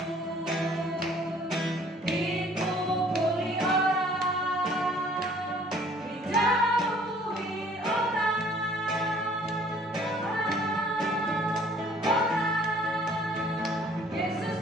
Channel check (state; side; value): normal; both; correlation 0.56